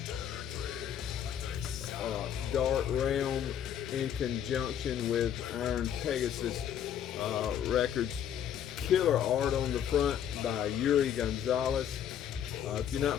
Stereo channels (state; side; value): quieter; right; 9.5 dB